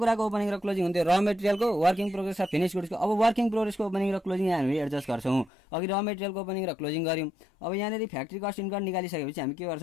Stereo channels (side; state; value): right; drops out; at 5.5 s